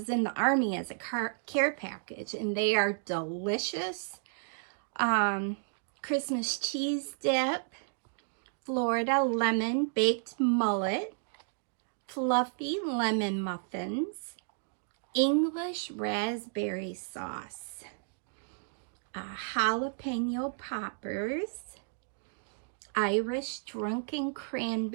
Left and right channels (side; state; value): left; silent; digital silence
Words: in the Army as a care package, and they are delicious. Christmas cheese dip, Florida lemon baked mullet, fluffy lemon muffins, English raspberry sauce, jalapeno poppers, Irish drunken